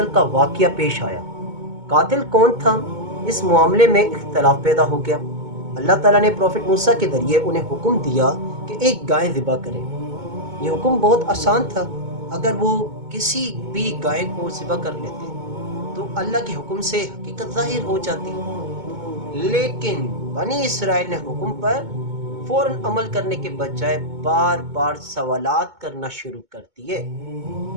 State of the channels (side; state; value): left; late; 2.2 ms